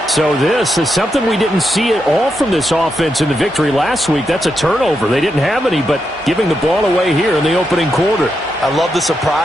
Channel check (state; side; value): normal; both; correlation 0.84